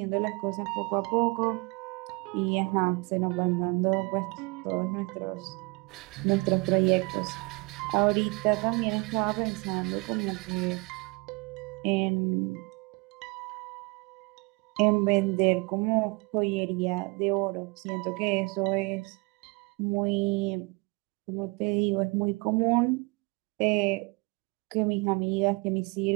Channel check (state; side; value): quieter; left; 29.0 dB